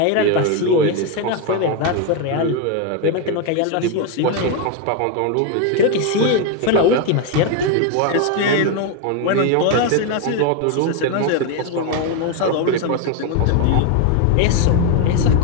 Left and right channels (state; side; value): different; both; correlation 0.01